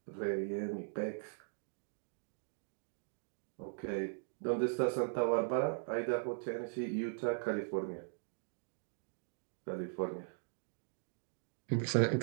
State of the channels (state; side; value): silent; left; digital silence